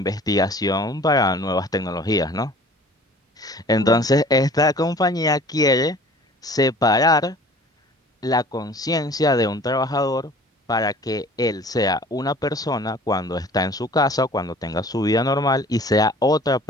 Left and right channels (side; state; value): both; normal; correlation 0.48